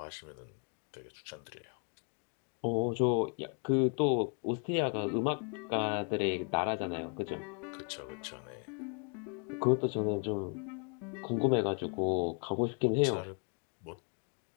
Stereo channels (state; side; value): quieter; right; 39.9 dB